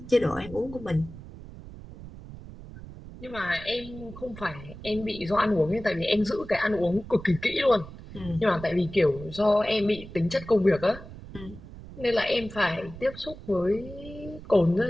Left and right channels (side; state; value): right; noise; rumble, 15 dB below the sound